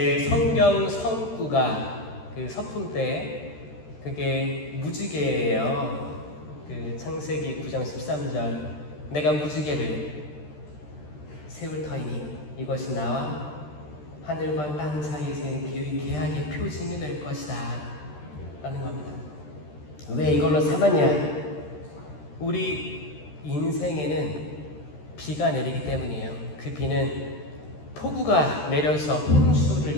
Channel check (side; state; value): right; late; 13 ms